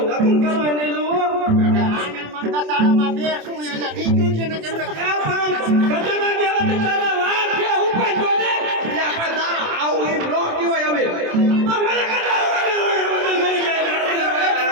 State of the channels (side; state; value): left; late; 27 ms